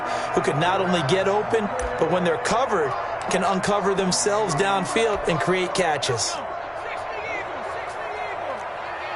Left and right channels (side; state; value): both; identical; correlation 1.00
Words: who can not only get open, but when they're covered, can uncover themselves downfield and create catches.